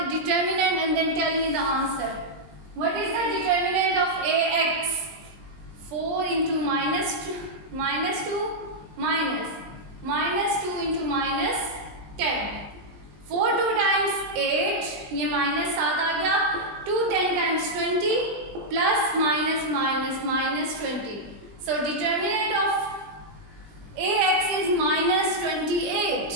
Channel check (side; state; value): left; late; 20 ms